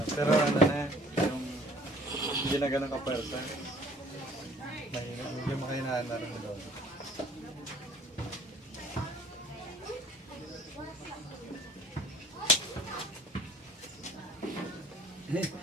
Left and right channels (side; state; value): both; normal; correlation 0.55